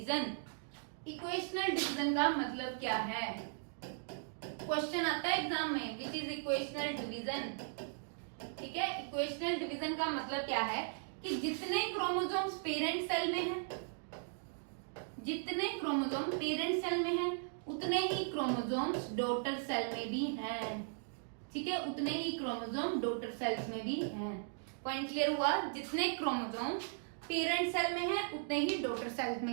इक्वेशनल डिवीजन का मतलब क्या है? क्वेश्चन आता है एग्जाम में, विच इज इक्वेशनल डिवीजन, ठीक है। इक्वेशनल डिवीजन का मतलब क्या है कि जितने क्रोमोसोम्स पेरेंट सेल में हैं, जितने क्रोमोसोम पेरेंट सेल में हैं, उतने ही क्रोमोसोम्स डॉटर सेल में भी हैं, ठीक है, उतने ही क्रोमोसोम डॉटर सेल्स में भी हैं। पॉइंट क्लियर हुआ? जितने क्रोमोसोम पेरेंट सेल में हैं, उतने ही डॉटर सेल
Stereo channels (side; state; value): left; silent; digital silence